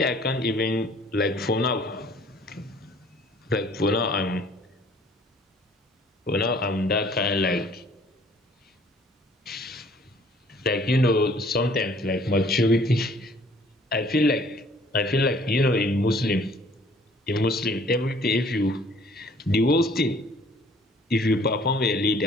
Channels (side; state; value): both; normal; correlation 0.56